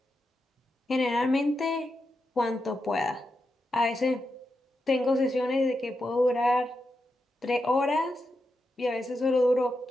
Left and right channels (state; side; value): normal; both; correlation 0.87